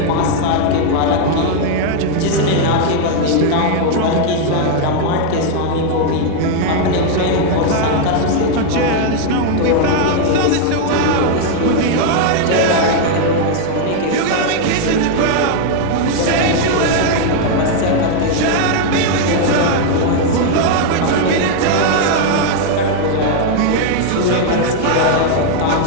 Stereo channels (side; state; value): both; different; correlation 0.00